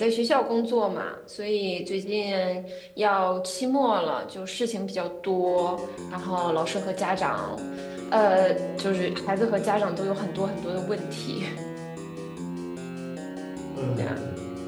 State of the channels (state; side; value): identical; both; correlation 1.00